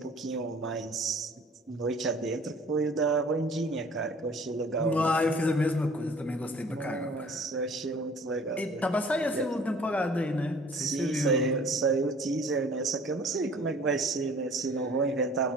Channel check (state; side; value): normal; both; correlation 0.51